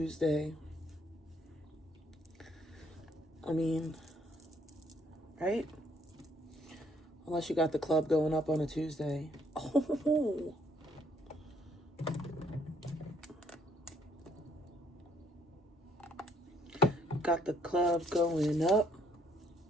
I mean, right? Unless you got the club going up on a Tuesday. Oh. Got the club going up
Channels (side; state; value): both; normal; correlation 0.66